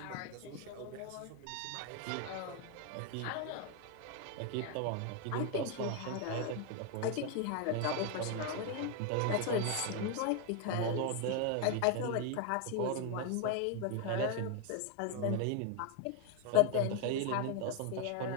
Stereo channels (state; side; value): different; both; correlation 0.01